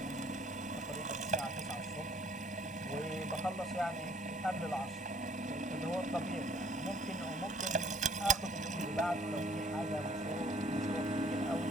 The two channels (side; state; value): both; normal; correlation 0.58